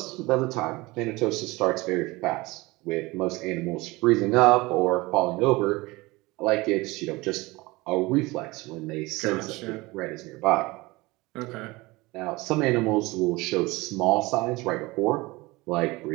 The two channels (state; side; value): quieter; left; 22.1 dB